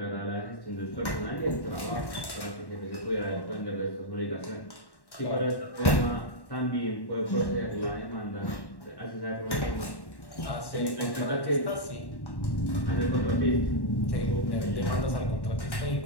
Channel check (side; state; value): right; late; 1.1 ms